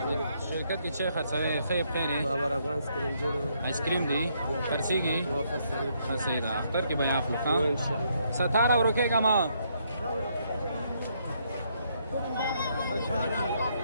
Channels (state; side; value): inverted; both; correlation -0.73